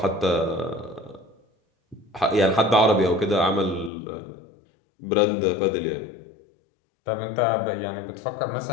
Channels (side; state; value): right; drops out; at 3.9 s